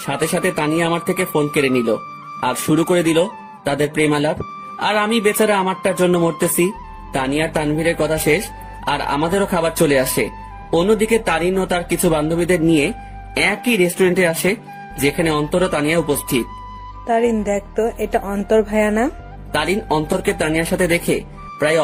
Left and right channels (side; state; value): both; identical; correlation 1.00